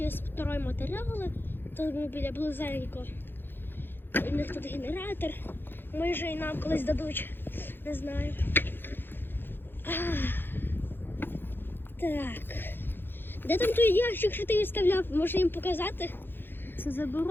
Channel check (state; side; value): late; right; 0.10 ms